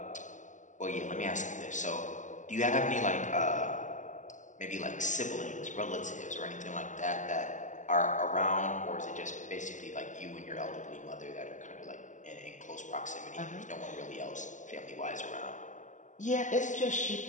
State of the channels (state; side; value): late; right; 0.36 ms